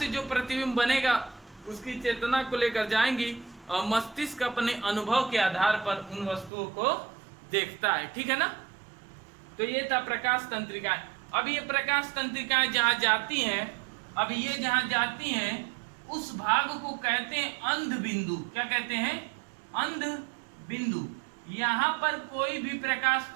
जो प्रतिबिंब बनेगा उसकी चेतना को लेकर जाएंगी, और मस्तिष्क अपने अनुभव के आधार पर उन वस्तुओं को देखता है, ठीक है ना। तो ये था प्रकाश तंत्रिकाएं। अब ये प्रकाश तंत्रिकाएं जहां जाती हैं, अब ये जहां जाती हैं उस भाग को कहते हैं अंध बिंदु। क्या कहते हैं, अंध बिंदु। यहाँ पर कोई भी प्रकाश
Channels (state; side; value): drops out; left; at 6.5 s